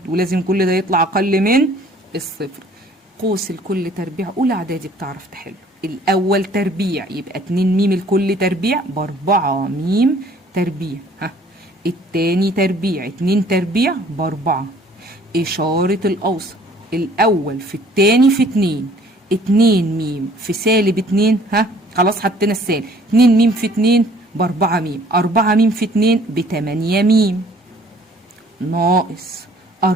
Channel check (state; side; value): normal; both; correlation 0.56